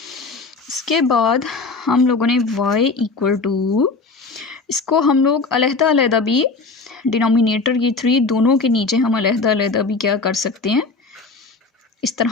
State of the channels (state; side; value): quieter; right; 4.0 dB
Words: इसके बाद हम लोगों ने y इक्वल टू, इसको हम लोग अलहदा अलहदा भी डिनोमिनेटर ये 3 दोनों के नीचे हम अलहदा अलहदा भी क्या कर सकते हैं, इस